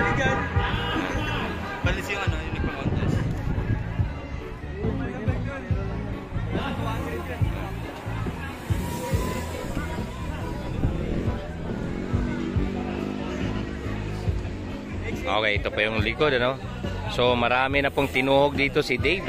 dyan. Balis yung ano, yung nagpa-contest. Okay, ito pa yung likod, ano? So, marami na pong tinuhog dito si Dave,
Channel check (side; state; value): both; identical; correlation 1.00